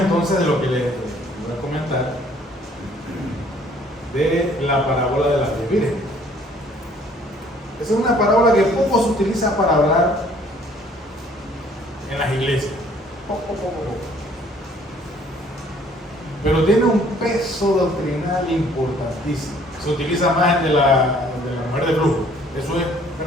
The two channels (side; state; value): both; normal; correlation 0.59